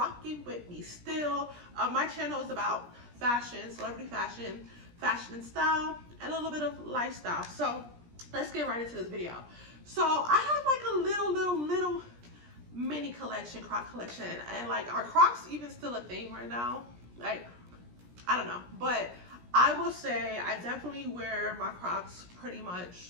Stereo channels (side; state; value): left; late; 17 ms